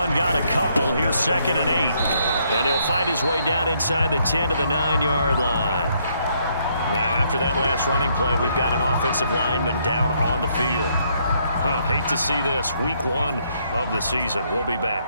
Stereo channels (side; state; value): both; inverted; correlation -0.71